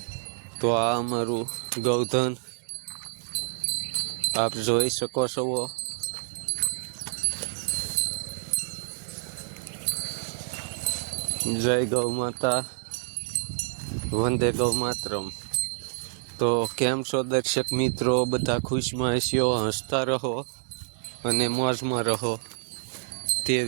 તો આ અમારું ગૌધન આપ જોઈ શકો છો। જય ગૌ માતા, વંદે ગૌ માતરમ। તો કેમ છો દર્શક મિત્રો, બધા ખુશમાં હશો, હસતા રહો અને મોજમાં રહો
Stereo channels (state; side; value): silent; left; digital silence